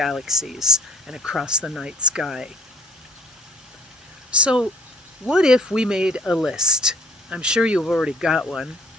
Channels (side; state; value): both; normal; correlation 0.56